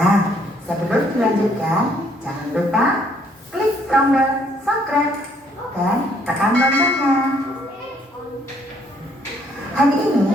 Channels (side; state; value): both; normal; correlation 0.66